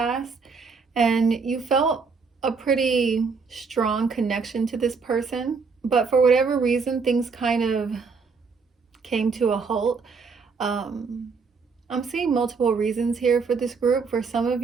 and you felt a pretty strong connection to this person. But for whatever reason, things kind of came to a halt. I'm seeing multiple reasons here for this group. For some of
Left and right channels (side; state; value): left; quieter; 5.0 dB